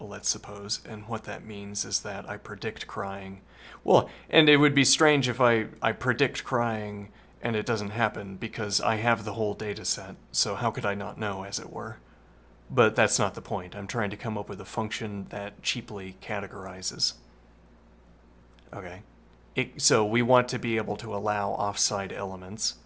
let's suppose, and what that means is that I predict crying. Well, and it would be strange if I predict crying and it doesn't happen because I have the whole data set, so how could I not know, as it were? But that's not the point. I'm trying to come up with a function that cheaply categorizes. Okay. So we want to be able to allow offside elements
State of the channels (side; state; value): both; identical; correlation 1.00